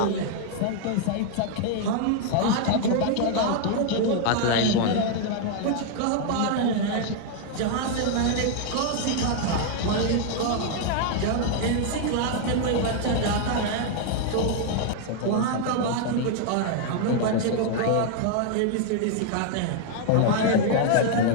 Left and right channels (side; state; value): both; different; correlation 0.00